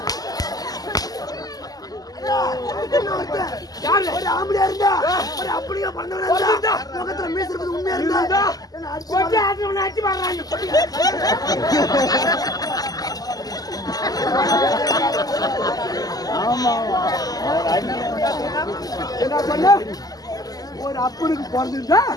ஒரு ஆம்பளையா இருந்தா ஒரு அப்படியே பண்ணவனா இருந்தா முகத்துல மீசை இருக்குது உண்மையா இருந்தா கொட்டி ஆட்டவன அடி மாறாங்க. ஆமா என்ன பண்ண ஒரு அப்பனுக்கு பிறந்திருந்தா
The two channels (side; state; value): right; late; 0.18 ms